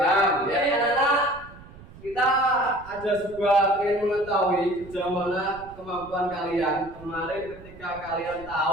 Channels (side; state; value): right; noise; rumble, 19 dB below the sound